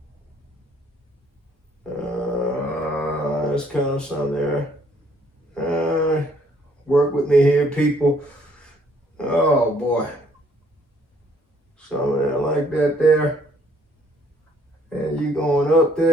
There's kind of some there. Work with me here, people. Oh boy. Something like that there. And you going up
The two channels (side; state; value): both; normal; correlation 0.64